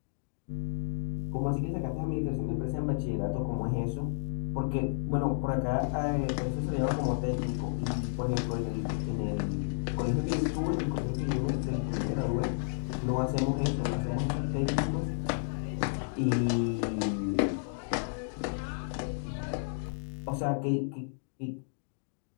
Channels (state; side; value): silent; right; digital silence